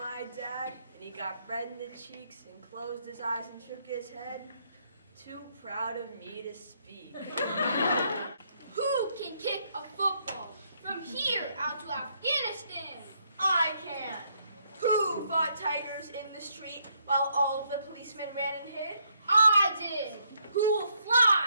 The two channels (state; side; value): inverted; both; correlation -0.73